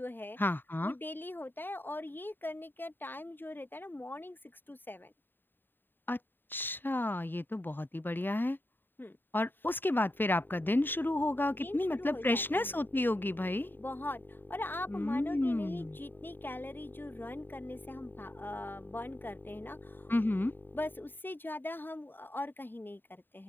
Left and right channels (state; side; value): late; right; 0.095 ms